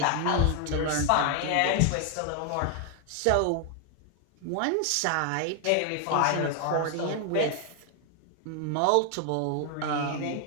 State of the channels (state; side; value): different; both; correlation 0.00